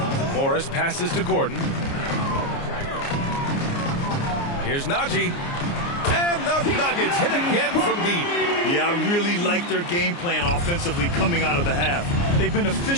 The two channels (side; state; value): right; late; 29 ms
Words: Morris passes to Gordon. Here's Najee. And the Nuggets hit again from deep. Yeah, I really like their game plan offensively coming out of the half. They've been